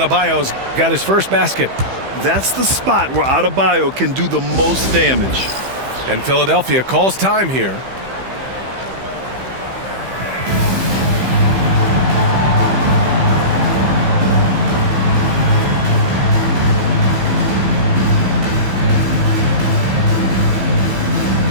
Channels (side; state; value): left; late; 15 ms